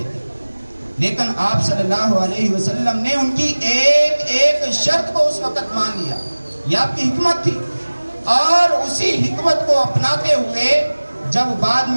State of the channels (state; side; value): inverted; both; correlation -1.00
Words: تھی, لیکن آپ صلی اللہ علیہ وسلم نے ان کی ایک شرط کو اس وقت مان لیا. یہ آپ کی حکمت تھی, اور اسی حکمت کو اپناتے ہوئے جب بعد